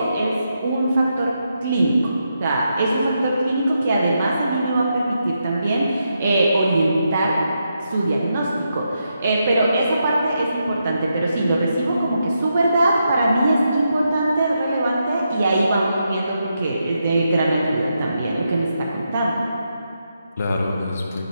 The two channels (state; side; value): inverted; both; correlation -0.83